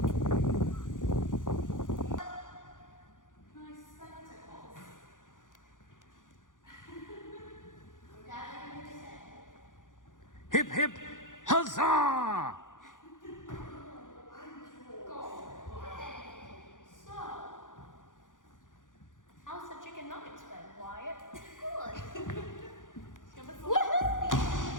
Hip, hip, huzzah! How's the chicken nuggets been, Wyatt?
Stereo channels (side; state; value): right; late; 0.88 ms